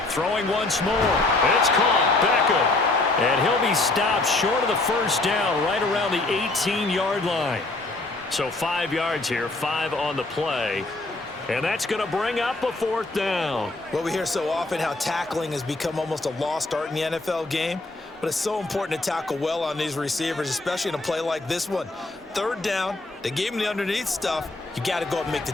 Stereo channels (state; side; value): quieter; right; 3.0 dB